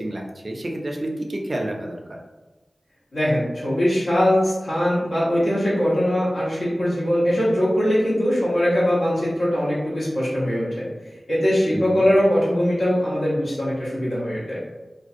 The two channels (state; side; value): normal; both; correlation 0.96